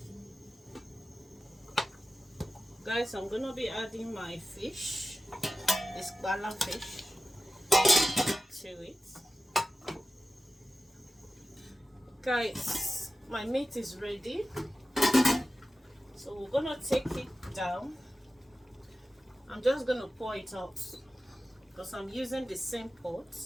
Guys, I'm going to be adding my fish, this bala fish, to it. Guys, my meat is ready. So we're going to take it down. I'm just going to pour it out because I'm using the same pot.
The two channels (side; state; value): both; normal; correlation 0.94